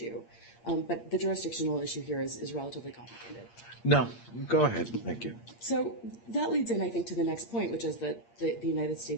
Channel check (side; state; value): right; late; 8.6 ms